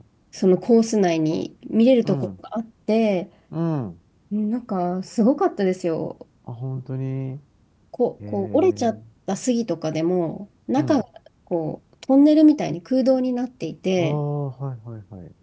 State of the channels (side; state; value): both; identical; correlation 1.00